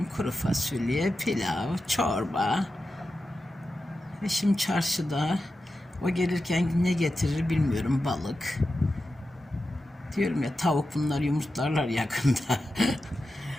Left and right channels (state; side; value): normal; both; correlation 0.91